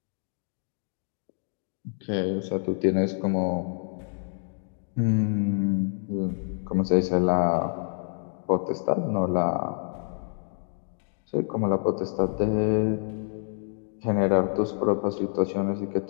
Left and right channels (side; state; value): right; silent; 60 dB below the other